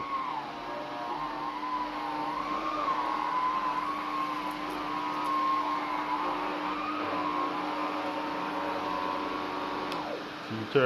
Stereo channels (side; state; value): both; identical; correlation 1.00